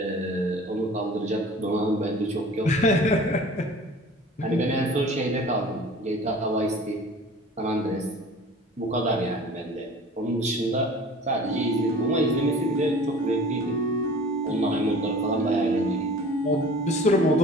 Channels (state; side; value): normal; both; correlation 0.44